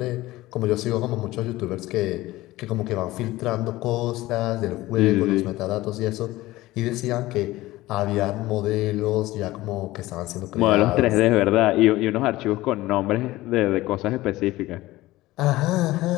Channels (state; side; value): quieter; right; 17.8 dB